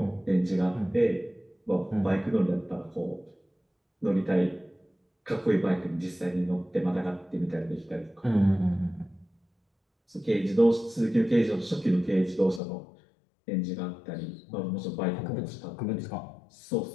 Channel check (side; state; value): right; drops out; at 12.6 s